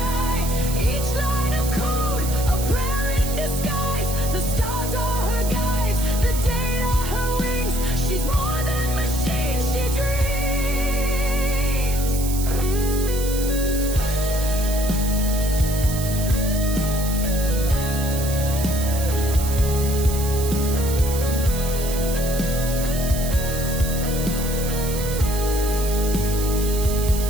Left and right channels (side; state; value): right; noise; hiss, 8 dB below the sound